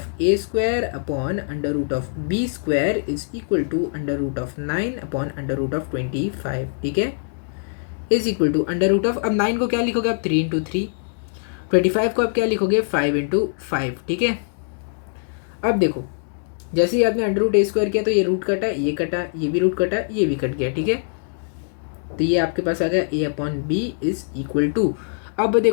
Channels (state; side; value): silent; right; digital silence